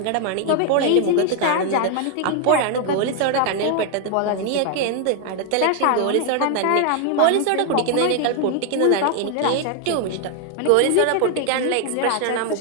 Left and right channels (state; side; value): different; both; correlation 0.00